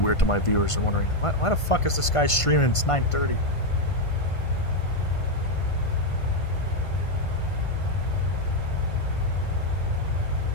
weird to my viewers. Are wondering, why the fuck is this guy streaming? It's 9:30.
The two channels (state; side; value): late; right; 1.5 ms